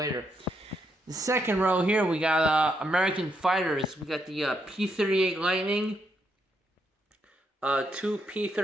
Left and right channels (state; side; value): normal; both; correlation 0.78